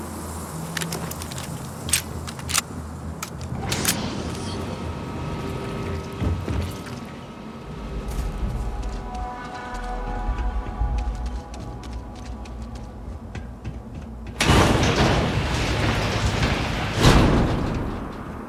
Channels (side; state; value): both; identical; correlation 1.00